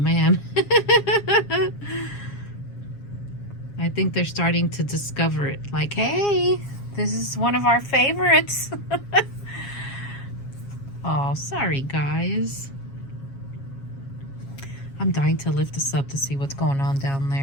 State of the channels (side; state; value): right; late; 7.3 ms